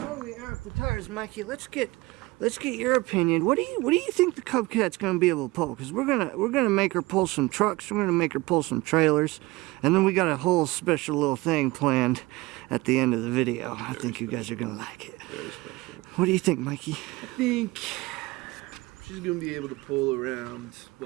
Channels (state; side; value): quieter; left; 21.5 dB